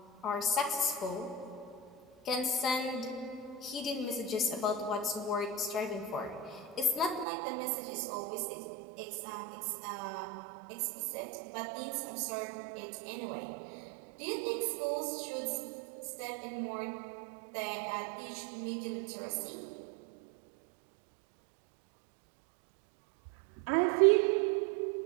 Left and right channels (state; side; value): drops out; left; at 7.2 s